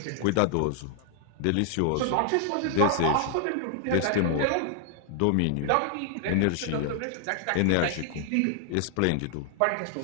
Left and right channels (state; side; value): different; both; correlation 0.00